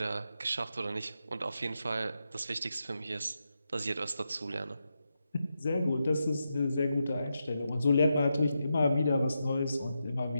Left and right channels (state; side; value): inverted; both; correlation -0.87